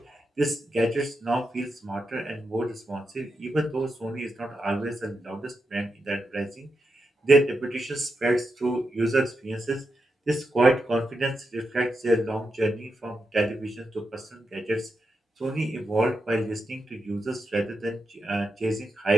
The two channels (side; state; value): both; normal; correlation 0.86